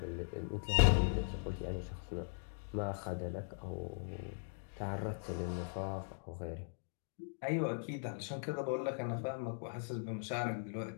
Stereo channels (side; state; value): right; silent; digital silence